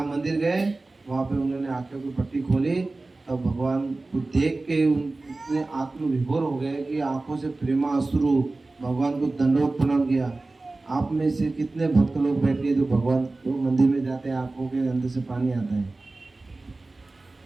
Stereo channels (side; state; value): left; quieter; 3.3 dB